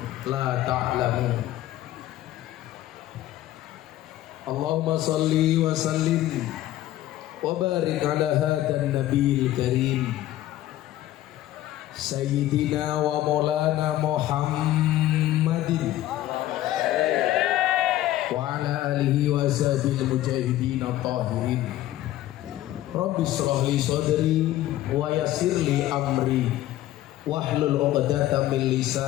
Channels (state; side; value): quieter; right; 14.4 dB